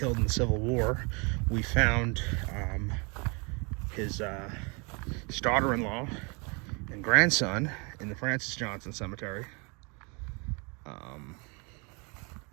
in the Civil War. We found his daughter-in-law and grandson in the Francis Johnson Cemetery.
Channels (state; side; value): quieter; left; 31.6 dB